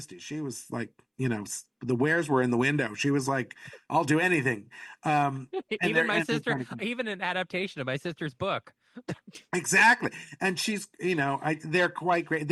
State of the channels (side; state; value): both; identical; correlation 1.00